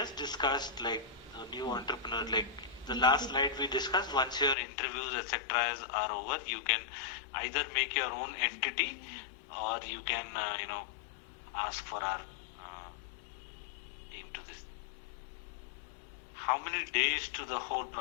discussed like a new entrepreneur, like the last slide we discussed, once your interviews, etc. are over, you can either make your own entity or you can, ask for our team to this. How many days to the whole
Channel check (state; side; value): drops out; right; at 4.5 s